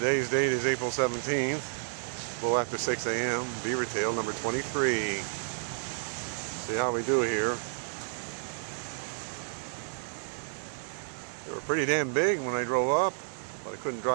date is April 17th, a little after 6 a.m. Beaver tail number 23. See how we do here. They were pretty damn big when I drove up, but I couldn't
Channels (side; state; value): left; silent; digital silence